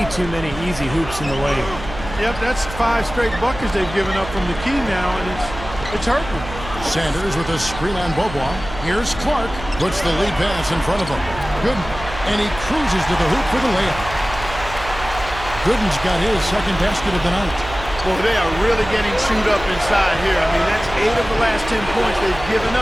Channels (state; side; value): noise; right; hum, 12 dB below the sound